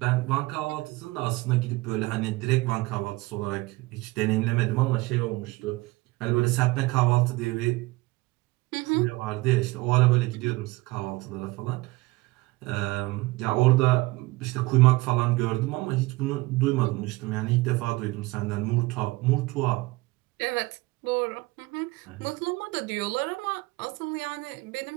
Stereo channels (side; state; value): left; quieter; 21.6 dB